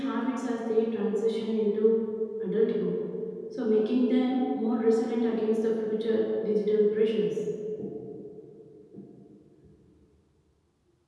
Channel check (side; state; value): both; identical; correlation 1.00